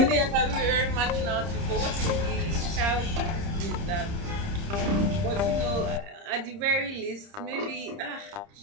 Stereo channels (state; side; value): late; left; 30 ms